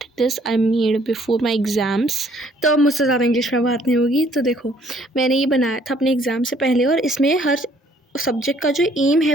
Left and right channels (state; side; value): normal; both; correlation 0.62